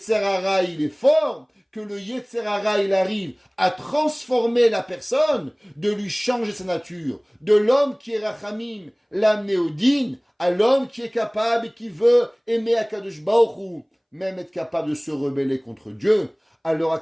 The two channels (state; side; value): identical; both; correlation 1.00